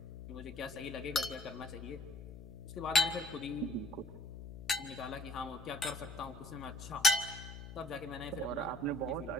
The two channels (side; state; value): left; noise; hum, 12 dB below the sound